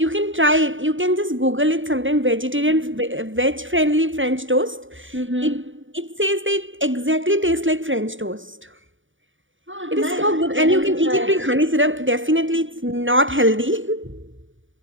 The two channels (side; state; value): left; late; 0.57 ms